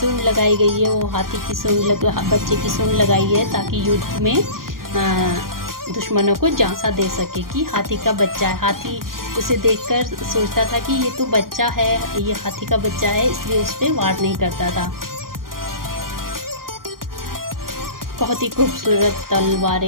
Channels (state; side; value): late; left; 0.91 ms